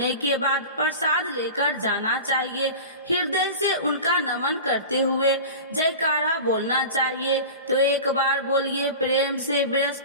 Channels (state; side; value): inverted; both; correlation -0.33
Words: के बाद प्रसाद लेकर जाना चाहिए। हृदय से उनका नमन करते हुए जयकारा बोलना चाहिए। तो एक बार बोलिए प्रेम से,